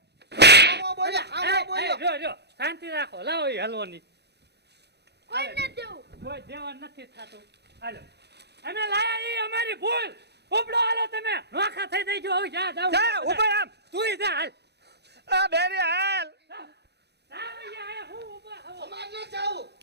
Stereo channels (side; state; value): left; late; 0.49 ms